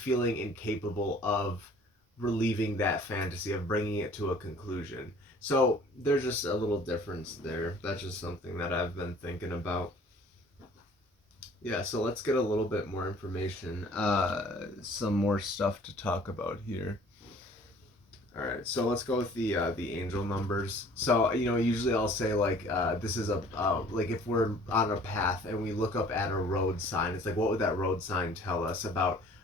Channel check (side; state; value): both; normal; correlation 0.52